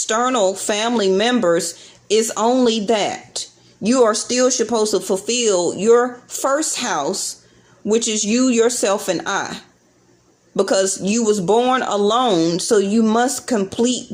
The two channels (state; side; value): identical; both; correlation 1.00